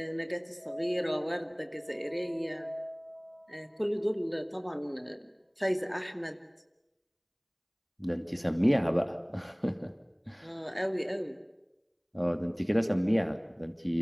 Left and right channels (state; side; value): identical; both; correlation 1.00